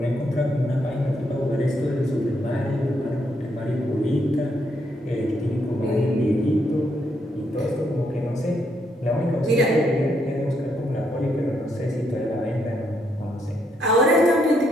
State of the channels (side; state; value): both; normal; correlation 0.76